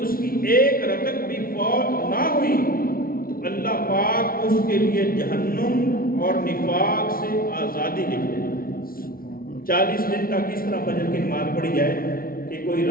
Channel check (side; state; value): right; late; 0.43 ms